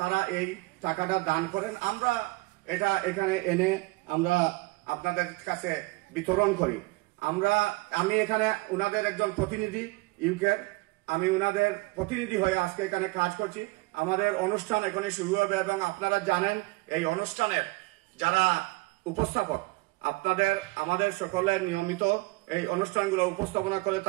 তারা এই টাকাটা দান করেন। আমরা এটা এখানে এনে আমরা আপনাদের কাছে বিতরণ করি। আমি এখানে উনাদের একজন প্রতিনিধি ইউকের, আমি উনাদের প্রতিনিধি হয়ে আজকে এখানে কাজ করছি। আমাদের অনুষ্ঠান এখনই শুরু হবে এবং আপনারা জানেন এই অনুষ্ঠানের যারা উপস্থাপক আমাদের সকলের নিয়মিত এই অনুষ্ঠানগুলো উপস্থাপনা করে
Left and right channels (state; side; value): quieter; left; 23.5 dB